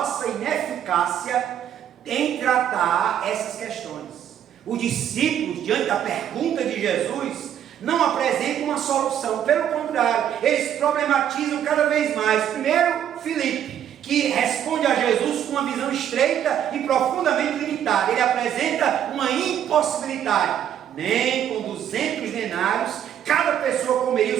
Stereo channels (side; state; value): left; quieter; 10.0 dB